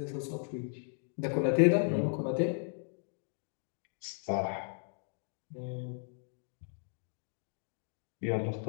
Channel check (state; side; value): silent; right; 54 dB below the other